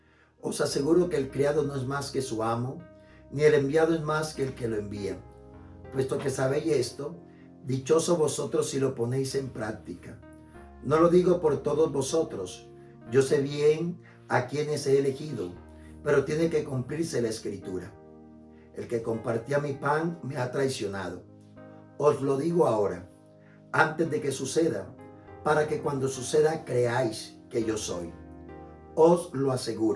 os aseguro que el criado no es más que su amo, ni el enviado es más que el que lo envía. Puesto que sabéis esto, dichosos vosotros si lo ponéis en práctica. No lo digo por todos vosotros, yo sé bien a quienes he elegido, pero tiene que cumplirse la Escritura. El que compartía mi pan me ha traicionado. Os lo digo ahora, antes de que suceda, para que cuando suceda creáis que yo soy. Os lo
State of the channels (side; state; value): both; identical; correlation 1.00